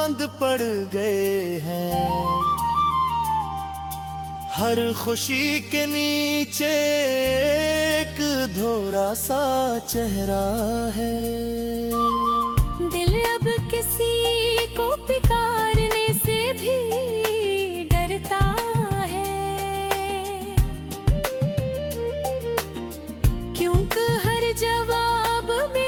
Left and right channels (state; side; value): identical; both; correlation 1.00